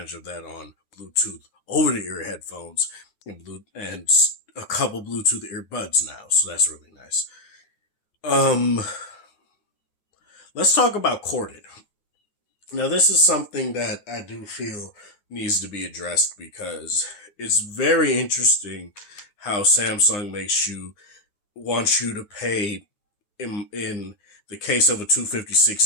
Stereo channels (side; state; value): right; late; 9.7 ms